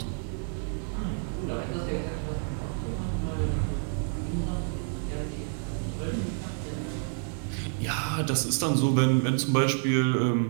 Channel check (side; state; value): left; silent; 56 dB below the other